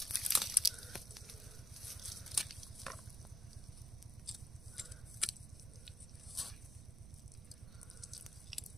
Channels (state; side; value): noise; right; rumble, 12 dB below the sound